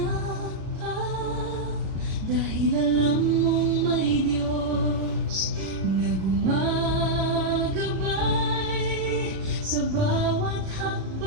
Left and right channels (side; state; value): left; late; 37 ms